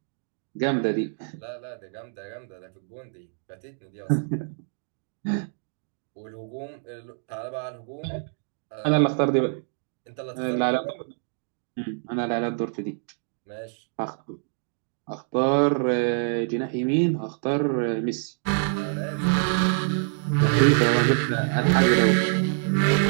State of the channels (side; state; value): left; silent; 61 dB below the other